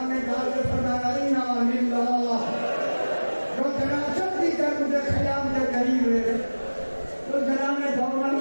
میں ڈال کے فرمایا انا للہ، جو جنازہ بھی کر مجھے خیام کے قریب رہے تو جناب نے دوڑنا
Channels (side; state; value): both; inverted; correlation -1.00